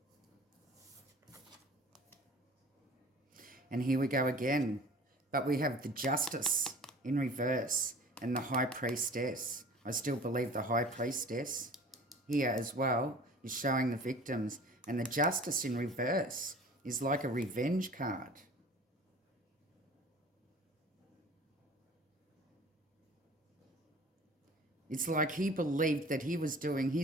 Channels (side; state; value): both; normal; correlation 0.45